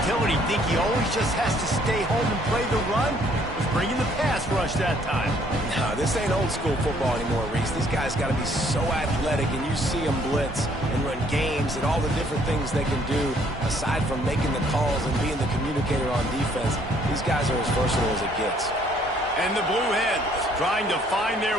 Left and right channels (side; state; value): both; normal; correlation 0.63